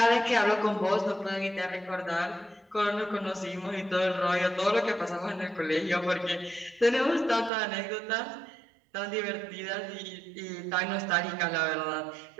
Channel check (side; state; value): left; drops out; at 7.5 s